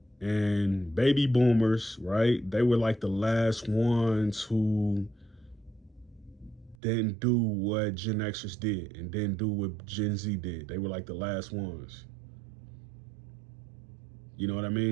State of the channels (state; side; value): drops out; left; at 6.8 s